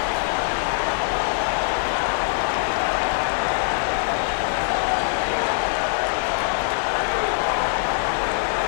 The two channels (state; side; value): silent; right; 57 dB below the other